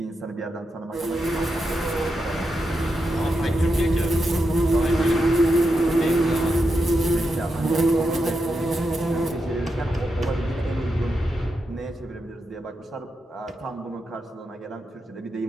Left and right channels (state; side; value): normal; both; correlation 0.86